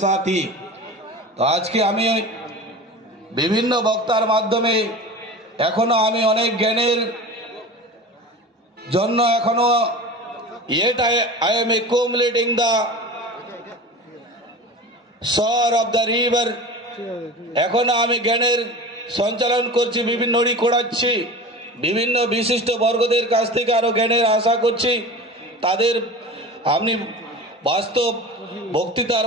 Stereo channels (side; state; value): both; normal; correlation 0.33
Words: সাথী। তো আজকে আমি বিভিন্ন বক্তার মাধ্যমে এখনো আমি অনেক জ্ঞানের জন্য এখনো I am accumulating the shore of the river। এখনো আমি জ্ঞানের সঞ্চালন করছি, বিভিন্ন নড়ি কোড়াচ্ছি, বিভিন্ন বিশিষ্ট বর্গদের কাছ থেকে আরো জ্ঞানের আশা করছি। তাদের আপনি বাস্তব বক্তৃতার